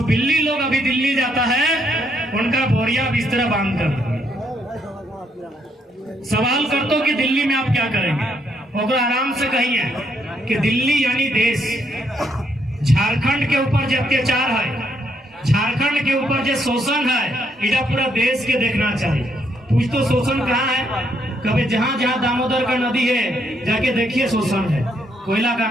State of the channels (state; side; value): normal; both; correlation 0.73